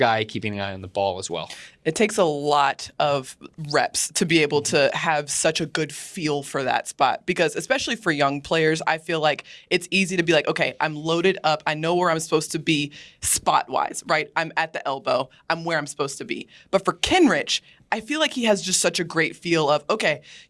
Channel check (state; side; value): identical; both; correlation 1.00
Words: keeping an eye on the ball as well? It takes a lot of reps to be able to have such a good feel for that spot, because especially for young players, I feel like it's easy to be like, okay, I'm loaded up. I know where I'm supposed to be spot-wise, right? I'm at the elbow. I'm where I'm supposed to be. But for Kenrich, I feel like he has just such a great feel of, okay,